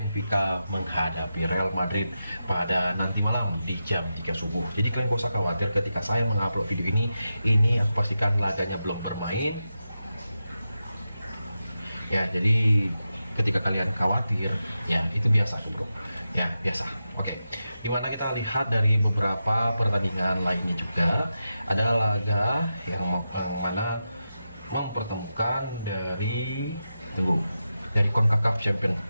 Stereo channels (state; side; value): inverted; both; correlation -0.89